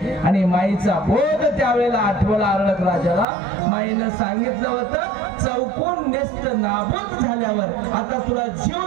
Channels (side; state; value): left; drops out; at 3.2 s